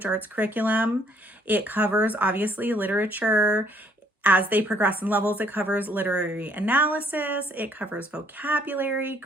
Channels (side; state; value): both; normal; correlation 0.65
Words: arts curriculum. It covers obviously literature. As they progress in levels, it covers literary analysis, it covers vocabulary,